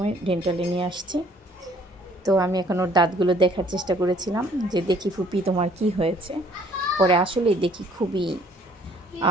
ডেন্টালে নিয়ে আসছি। তো আমি এখন ওর দাঁতগুলো দেখার চেষ্টা করেছিলাম, যে দেখি ফুপি তোমার কি হয়েছে। পরে আসলেই দেখি খুবই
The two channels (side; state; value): both; normal; correlation 0.60